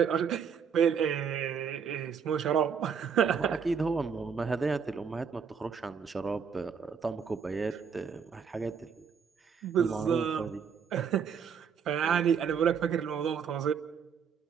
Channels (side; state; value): left; quieter; 6.8 dB